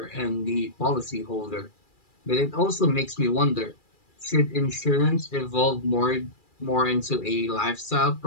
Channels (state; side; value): late; right; 2.4 ms